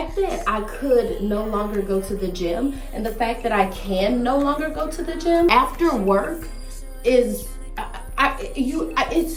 that I could no longer go to the gym, and the fact that I can no longer go to the gym after work is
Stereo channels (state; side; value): identical; both; correlation 1.00